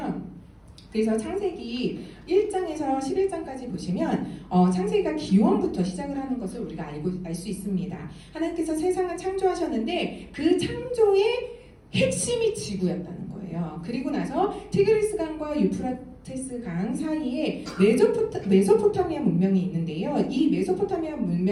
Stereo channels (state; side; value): identical; both; correlation 1.00